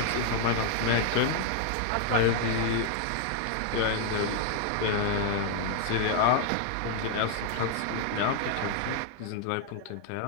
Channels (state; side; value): different; both; correlation 0.00